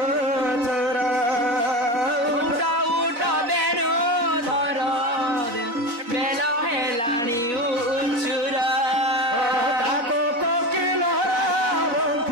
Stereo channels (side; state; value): left; late; 4.1 ms